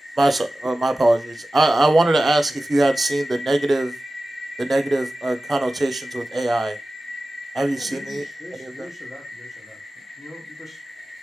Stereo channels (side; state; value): both; normal; correlation 0.95